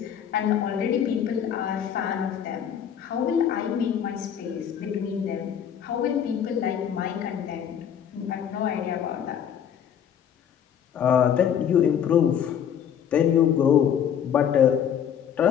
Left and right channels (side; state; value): right; quieter; 8.8 dB